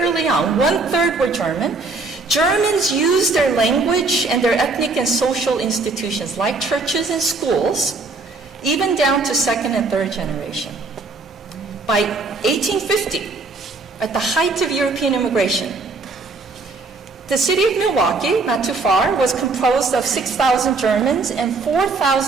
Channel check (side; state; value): left; quieter; 3.7 dB